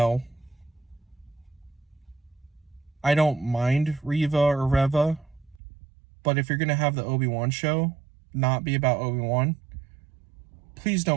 I don't mind Reva or Reva, but if you're going to have the Obi-Wan show not be about Obi-Wan, please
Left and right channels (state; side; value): drops out; left; at 5.6 s